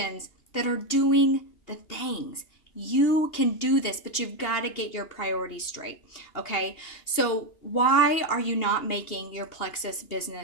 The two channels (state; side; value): late; right; 2.8 ms